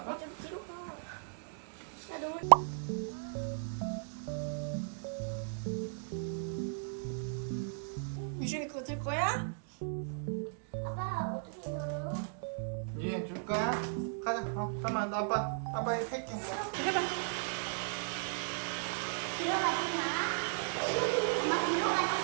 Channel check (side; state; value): left; silent; digital silence